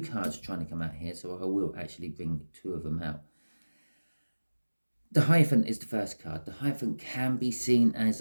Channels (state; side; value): inverted; both; correlation -1.00